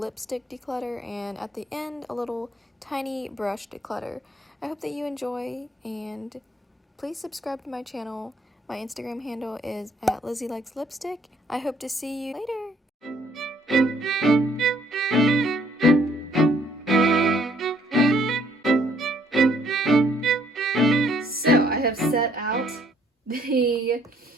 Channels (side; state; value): both; normal; correlation 0.65